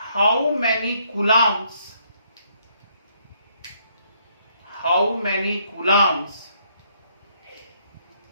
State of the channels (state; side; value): inverted; both; correlation -0.69